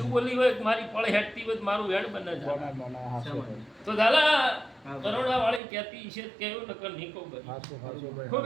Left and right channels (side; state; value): left; drops out; at 5.6 s